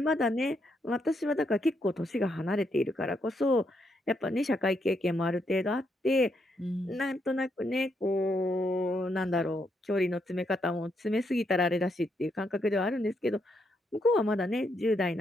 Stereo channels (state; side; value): normal; both; correlation 0.78